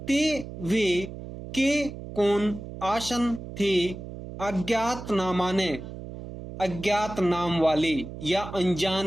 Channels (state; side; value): noise; right; hum, 11 dB below the sound